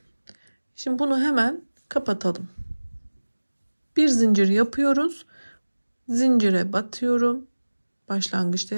Şimdi bunu hemen kapatalım. Bir zincir yapıyoruz. Zincire batıyorum. Başlangıçta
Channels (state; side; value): inverted; both; correlation -1.00